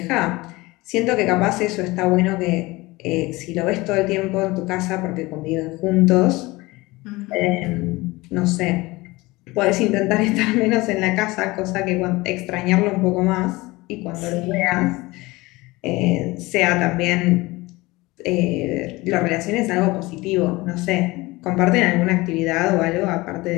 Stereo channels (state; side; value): quieter; right; 21.4 dB